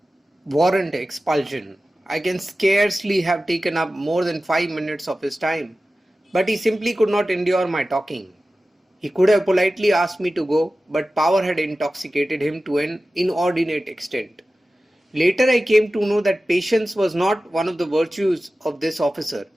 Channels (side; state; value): both; normal; correlation 0.95